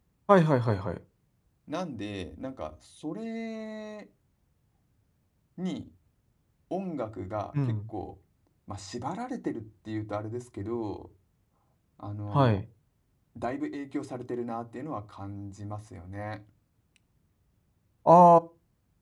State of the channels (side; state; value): both; identical; correlation 1.00